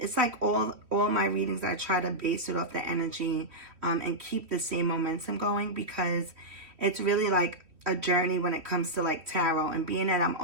like all my readings I try to base it off the energy and keep the same momentum going, because it's really like a journey when it comes to like tarot, and being that I'm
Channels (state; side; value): late; left; 3.1 ms